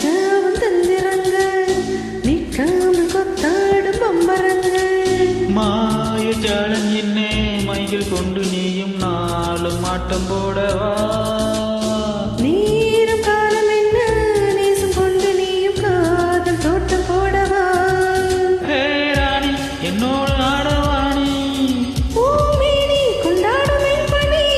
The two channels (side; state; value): both; identical; correlation 1.00